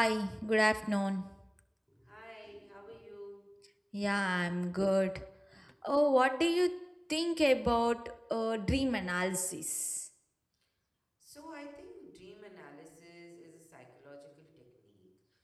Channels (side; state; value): both; identical; correlation 1.00